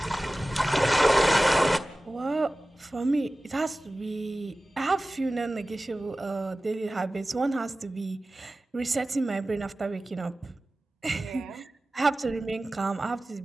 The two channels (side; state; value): both; normal; correlation 0.96